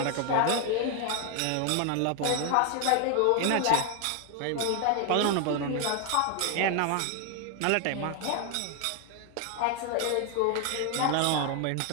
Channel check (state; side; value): different; both; correlation 0.00